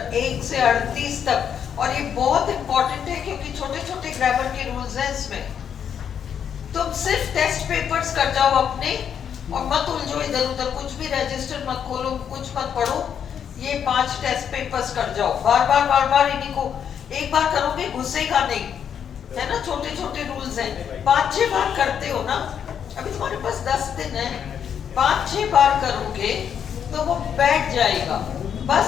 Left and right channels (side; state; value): right; quieter; 8.2 dB